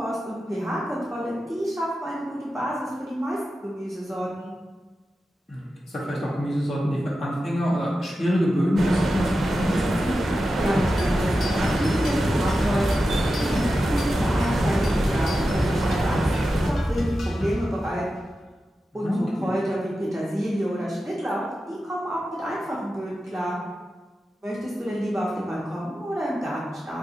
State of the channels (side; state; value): both; normal; correlation 0.92